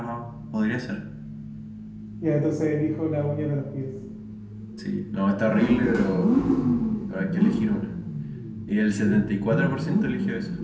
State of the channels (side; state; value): both; identical; correlation 1.00